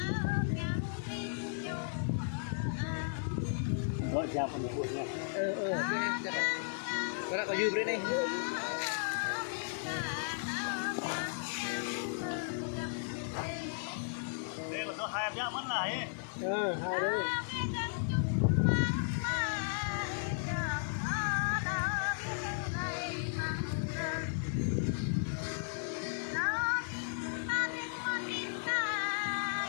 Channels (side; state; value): right; silent; digital silence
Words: Gọi ra phần một nha. Có đã có dư bên đây. Đây là do hai em nhá mất lại ấy. Hai đấy.